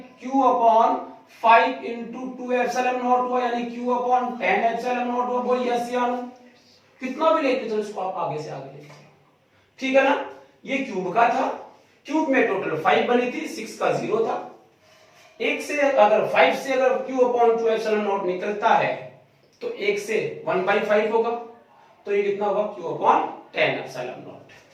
Q upon 5 into 2 epsilon not हुआ, यानी Q अपॉन 10 एप्सिलॉन नॉट हुआ। बोल यस या नो, कितना भी लेते चलो इसको आप आगे से आगे लेते, ठीक है ना। ये क्यूब का था, क्यूब में टोटल 5 बनी थी, 6 का 0 था, एक से अगर 5 से अगर q अपॉन 2 एप्सिलॉन नॉट निकलता है तो 1 से 1/5 होगा, तो ये कितना होगा q अपॉन 10 एप्सिलॉन नॉट।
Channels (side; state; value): both; identical; correlation 1.00